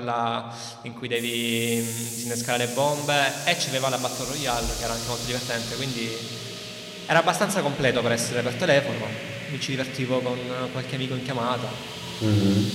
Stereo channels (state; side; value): identical; both; correlation 1.00